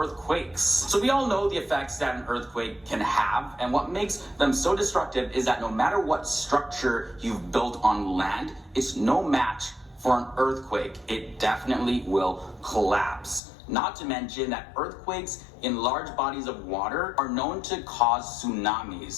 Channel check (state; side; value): drops out; right; at 13.4 s